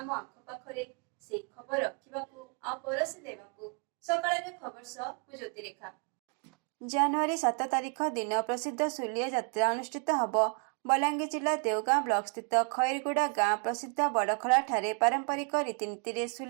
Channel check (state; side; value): quieter; left; 37.5 dB